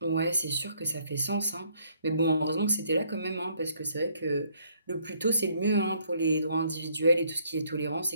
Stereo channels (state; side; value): inverted; both; correlation -0.67